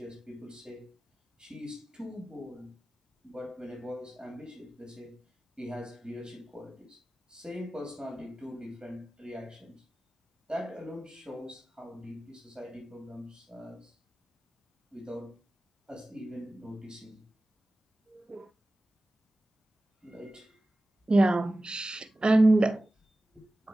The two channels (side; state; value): both; normal; correlation 0.96